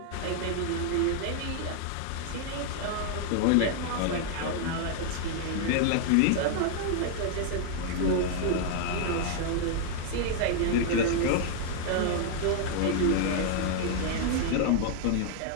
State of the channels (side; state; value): both; different; correlation 0.00